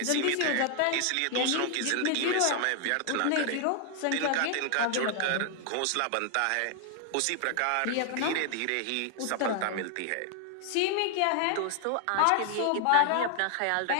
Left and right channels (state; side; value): different; both; correlation 0.00